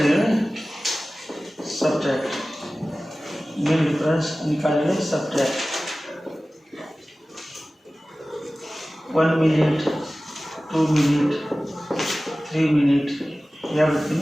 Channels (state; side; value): normal; both; correlation 0.97